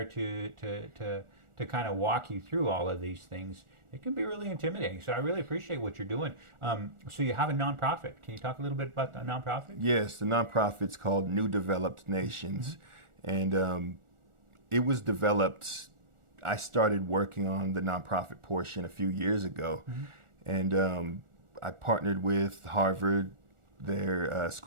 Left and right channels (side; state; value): left; late; 1.4 ms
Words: to kind of walk you through all of these things, it can be really intimidating. So I really appreciate what you're doing. So you have a nonprofit. Can you talk a little bit about the nonprofit? Yes, the nonprofit's called New Developed Nations. And it was developed, I started working on the nonprofit portion a few years ago. And I partnered with Harvard, their